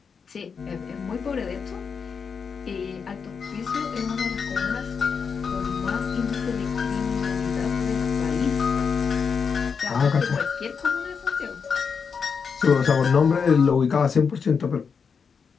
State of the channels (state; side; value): quieter; right; 5.9 dB